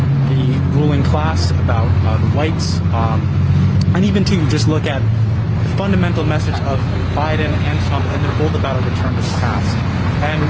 ruling class, about whites, and even to just look at the fundamental message of Biden and Trump, and they're both about a return to the past.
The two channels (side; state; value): both; identical; correlation 1.00